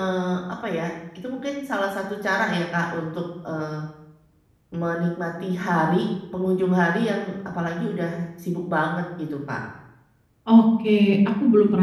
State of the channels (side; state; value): both; identical; correlation 1.00